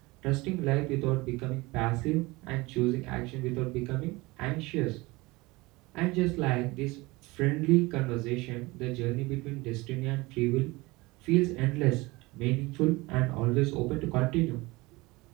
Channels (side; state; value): left; quieter; 22.5 dB